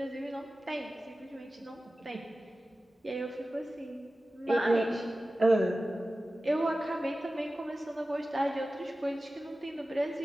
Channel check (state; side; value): normal; both; correlation 0.95